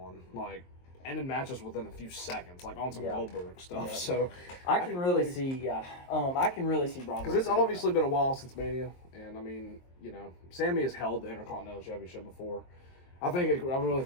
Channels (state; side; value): late; right; 23 ms